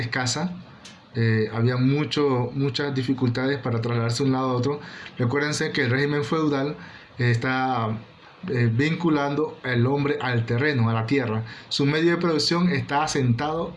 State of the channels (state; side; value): identical; both; correlation 1.00